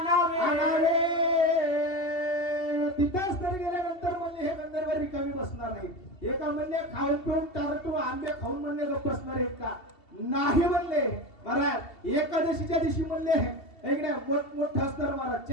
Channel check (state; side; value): late; right; 2.7 ms